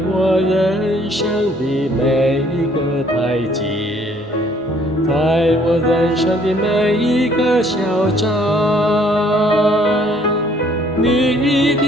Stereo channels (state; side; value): normal; both; correlation 0.61